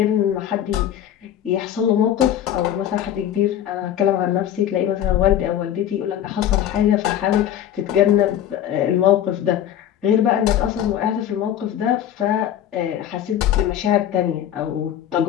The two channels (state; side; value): quieter; right; 10.8 dB